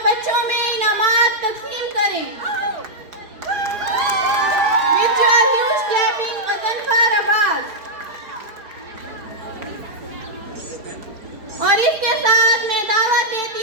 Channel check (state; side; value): late; left; 4.3 ms